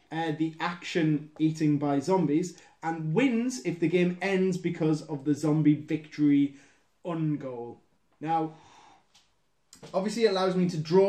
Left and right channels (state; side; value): identical; both; correlation 1.00